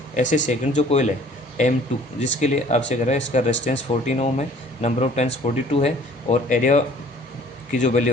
ऐसे सेकंड जो कोयल है M2 जिसके लिए आपसे कह रहा है इसका रेजिस्टेंस 14 ओम है, नंबर ऑफ टर्न्स 42 है और एरिया की जो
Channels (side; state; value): both; normal; correlation 0.53